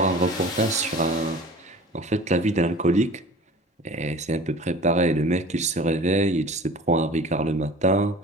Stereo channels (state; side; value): normal; both; correlation 0.42